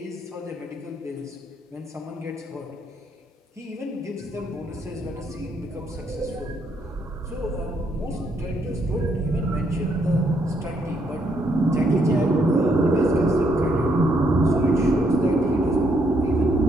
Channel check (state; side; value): normal; both; correlation 0.73